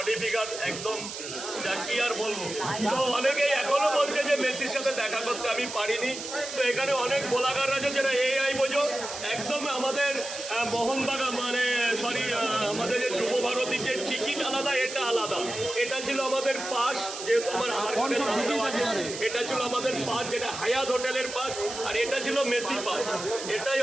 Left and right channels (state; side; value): noise; right; hiss, 9 dB below the sound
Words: ফিগার একদম, কি আর বলবো। তো অনেকেই এখনো বলছে যে মেসির সাথে দেখা করতে আমি পারিনি। তো এখানে অনেক বোলাগার আছে যারা এআই বোঝো, একদম আমাদের মোহনবাগান মানে সরি আমাদের যে যুব ভারতীর যে টিকিট আলাদা, এটা আলাদা। এটা ছিল আমাদের পাস, যেহেতু আমার আধার কার্ডের নাম দেওয়া আছে, এটা ছিল আমাদের পাস যেটা হায়াত হোটেলের পাস, আর এটা ছিল মেসি পাস। এটাই